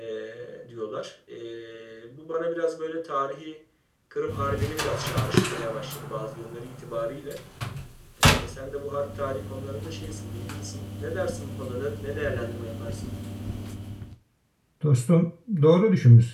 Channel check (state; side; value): identical; both; correlation 1.00